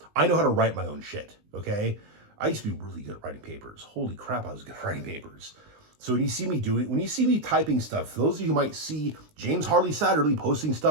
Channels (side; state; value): left; late; 19 ms